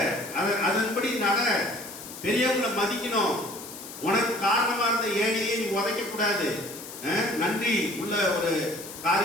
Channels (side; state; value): left; noise; hiss, 13 dB below the sound